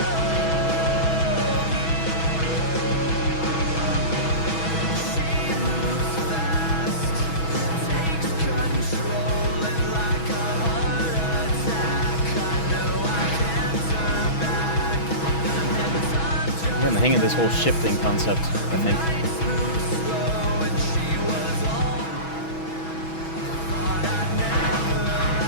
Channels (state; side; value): late; right; 6.1 ms